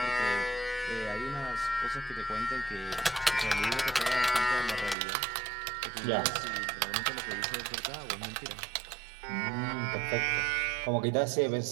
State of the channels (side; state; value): left; drops out; at 5.0 s